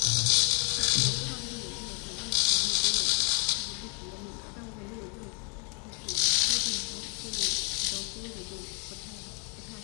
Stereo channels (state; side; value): quieter; right; 37.9 dB